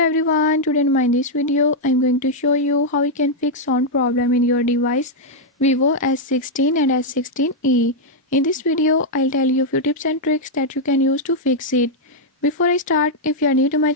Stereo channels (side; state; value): both; normal; correlation -0.03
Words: everyone, today in this video I'm going to show you how you can fix sound problem in your device Vivo S16 and S16e. In this video I'll tell you a few tips and tricks that you can use to fix it. Before I start, if you are new to my